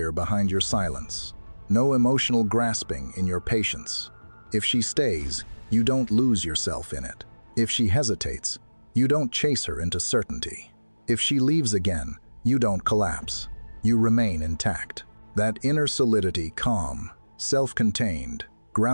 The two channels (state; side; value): inverted; both; correlation -1.00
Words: behind your silence, no emotional grasping in your patience. If she stays, you don't lose yourself in it. If she hesitates, you don't chase her into certainty. If she leaves again, you don't collapse. You remain intact. That inner solidity, calm, self-contained,